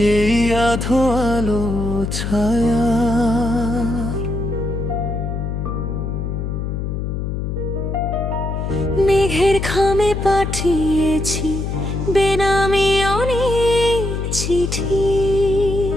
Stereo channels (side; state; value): left; noise; hum, 3 dB below the sound